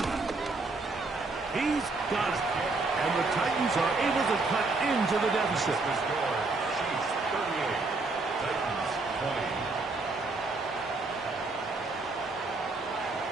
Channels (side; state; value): left; quieter; 3.6 dB